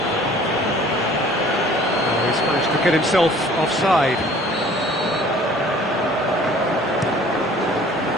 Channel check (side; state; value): both; normal; correlation 0.51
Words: Oh, he's managed to get himself offside.